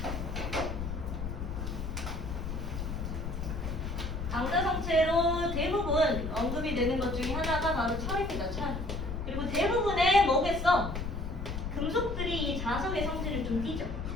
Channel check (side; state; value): left; noise; rumble, 5 dB below the sound